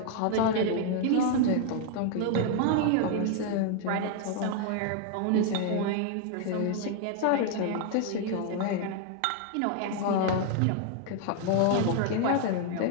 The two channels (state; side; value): different; both; correlation 0.00